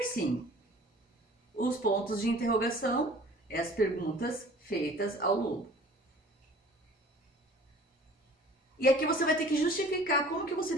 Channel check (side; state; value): both; normal; correlation 0.48